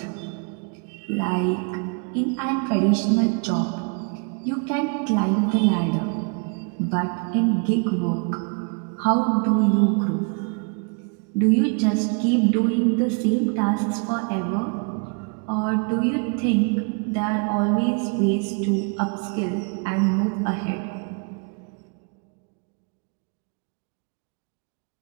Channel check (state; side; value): quieter; left; 37.0 dB